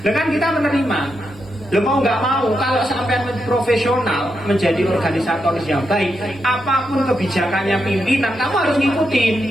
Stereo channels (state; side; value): normal; both; correlation 0.84